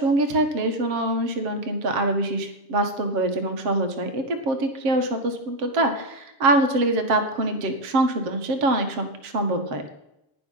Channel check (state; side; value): late; left; 7.4 ms